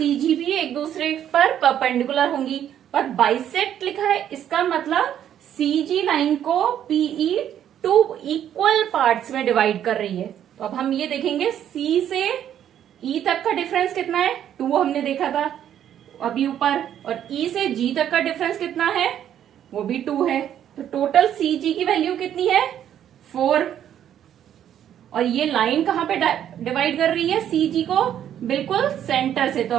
भी एक दूसरे पर परपेंडिकुलर होंगी। पर बाइसेक्ट लिखा है, इसका मतलब CG लाइन को PE 2 इक्वल पार्ट्स में डिवाइड कर रही है। तो अब हम ये देखेंगे C से E तक का डिफरेंस कितना है, 2 हमने देखा था अभी ऊपर। और E से G तक का डिफरेंस कितना है, वो भी 2 है। तो टोटल CG की वैल्यू कितनी है, 4। और ये लाइन कहां पे डिवाइड कर रही है CG को, बिल्कुल सेंटर से। तो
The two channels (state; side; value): quieter; left; 10.3 dB